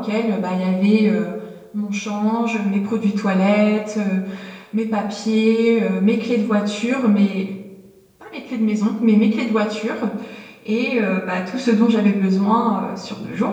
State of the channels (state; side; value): identical; both; correlation 1.00